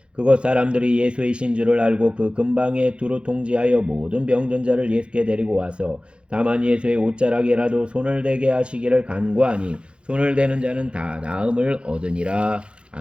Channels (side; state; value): left; late; 0.057 ms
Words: 그곳 사람들이 예수이신 줄을 알고 그 근방에 두루 통지하여 모든 병든 자를 예수께 데리고 와서 다만 예수의 옷자락에라도 손을 대게 하시기를 간구하니 손을 대는 자는 다 나음을 얻으니라.